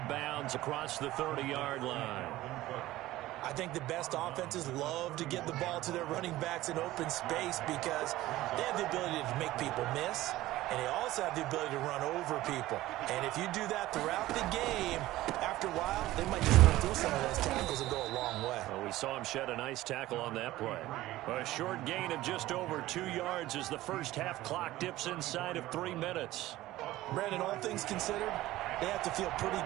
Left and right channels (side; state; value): left; quieter; 16.3 dB